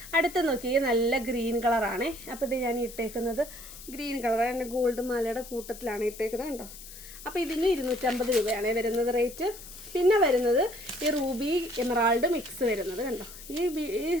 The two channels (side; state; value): left; noise; hiss, 15 dB below the sound